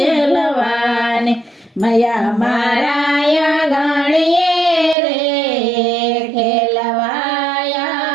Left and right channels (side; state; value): left; drops out; at 5.0 s